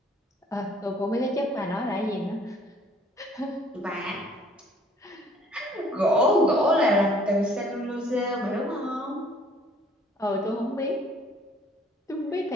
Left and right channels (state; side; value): normal; both; correlation 0.57